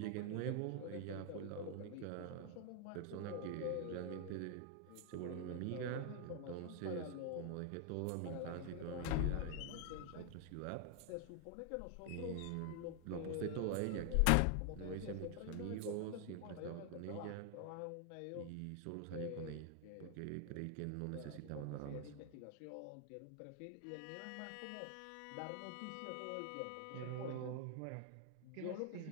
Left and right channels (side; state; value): both; different; correlation 0.00